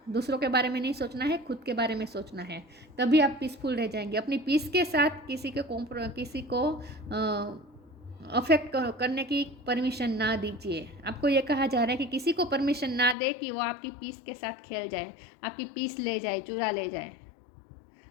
दूसरों के बारे में नहीं सोचना है, खुद के बारे में सोचना है, तभी आप पीसफुल रह जाएंगे। अपनी पीस के साथ किसी को अफेक्ट करने की परमिशन ना दीजिए। आपको ये कहा जा रहा है कि किसी को परमिशन ना दे कि वो आपकी पीस के साथ खेल जाए, आपकी पीस ले जाए, चुरा ले जाए।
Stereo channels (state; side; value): drops out; right; at 13.2 s